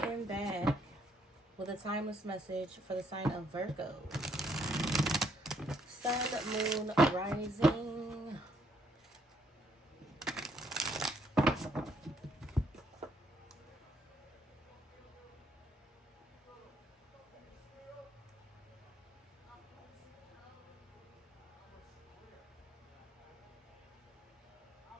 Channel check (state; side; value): normal; both; correlation 0.70